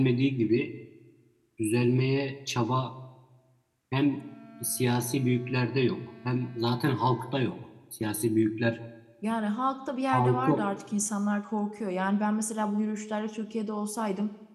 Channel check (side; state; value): both; identical; correlation 1.00